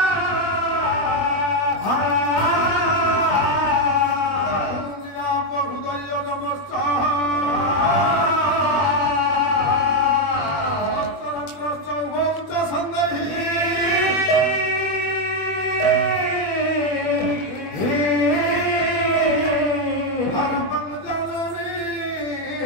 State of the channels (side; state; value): right; late; 21 ms